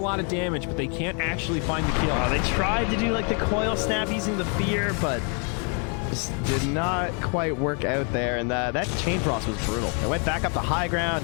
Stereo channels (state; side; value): quieter; right; 38.1 dB